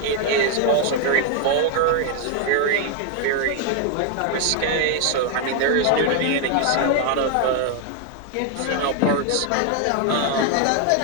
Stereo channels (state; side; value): different; both; correlation 0.00